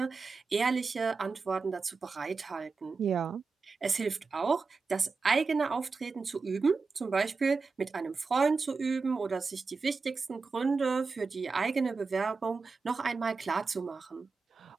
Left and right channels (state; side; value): quieter; left; 4.4 dB